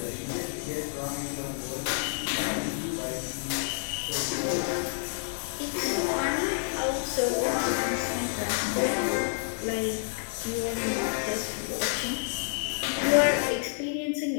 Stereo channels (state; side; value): silent; right; digital silence